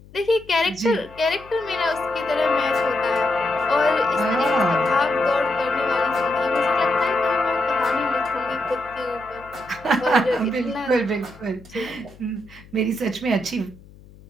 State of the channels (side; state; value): left; noise; hum, 23 dB below the sound